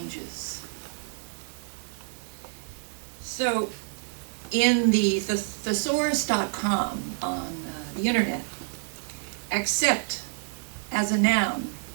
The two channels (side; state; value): left; silent; digital silence